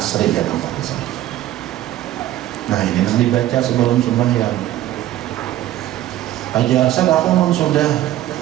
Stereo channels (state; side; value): quieter; left; 13.6 dB